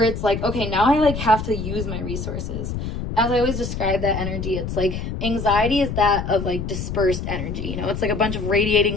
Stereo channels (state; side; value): noise; left; rumble, 5 dB below the sound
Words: it's like, okay, now I like have to use my resources. As I always describe that energy, it's like anxiety is that of like dispersed energy. You know, it's like a bunch of